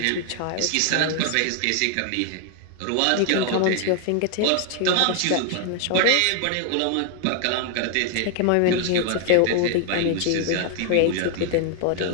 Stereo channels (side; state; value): both; different; correlation 0.00